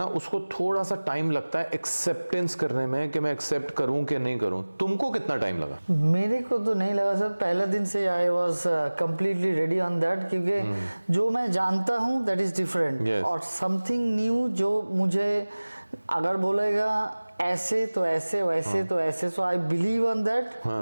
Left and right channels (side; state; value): both; inverted; correlation -1.00